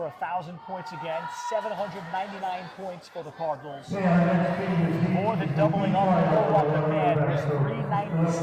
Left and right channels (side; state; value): both; identical; correlation 1.00